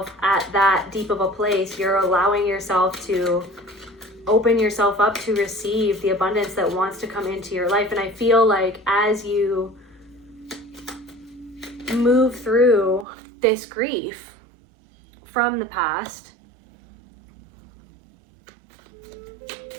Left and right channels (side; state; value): left; drops out; at 13.1 s